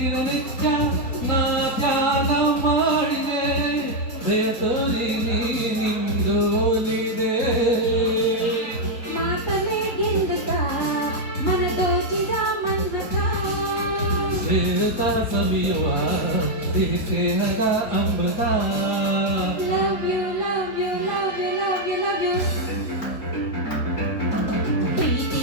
ನಾ ಧ್ಯಾನ ಮಾಡಿದೆ ದಯತೋರಿ ನೀನಿಂದೋಲಿದೆ. ಮಾತಲೇ ಗೆಲ್ಲುತ್ತ ಮನ ದೋಚಿದ ಮನ್ಮಥ. ಶ್ರೇತರ ಸವಿಯುವ ಸಿಹಿ ಸ್ನೇಹದ ಅಮೃತ. Love you, love you, love you, love you, love you.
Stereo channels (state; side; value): late; right; 4.3 ms